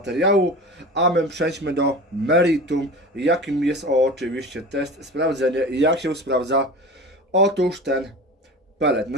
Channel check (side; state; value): both; normal; correlation 0.34